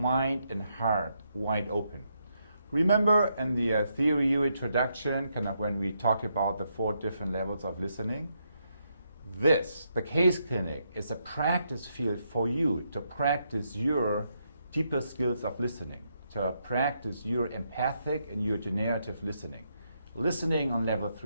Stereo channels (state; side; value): inverted; both; correlation -0.79